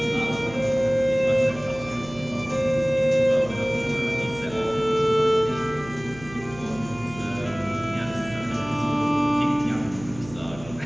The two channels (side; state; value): right; noise; hum, 17 dB below the sound